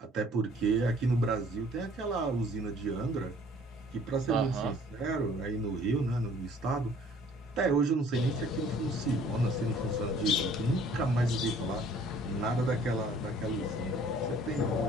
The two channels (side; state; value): both; normal; correlation 0.55